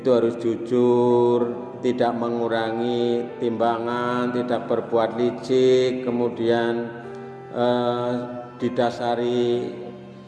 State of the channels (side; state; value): both; identical; correlation 1.00